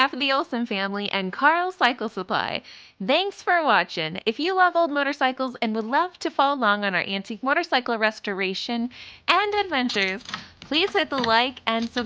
of the Olsen family and Carl Cycle Supply, thanks for watching. If you love old motorcycles and would love to follow along on our antique motorcycle restoration and adventures, please hit the like and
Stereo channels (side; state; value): both; identical; correlation 1.00